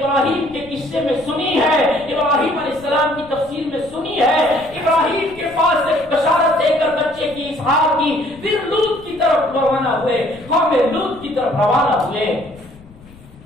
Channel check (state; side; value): noise; left; rumble, 23 dB below the sound